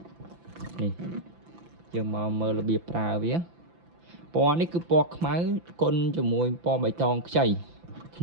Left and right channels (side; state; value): left; late; 5.9 ms